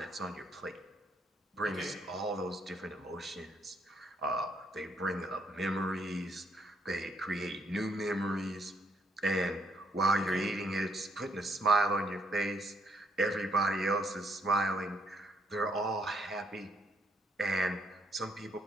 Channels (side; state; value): both; normal; correlation 0.71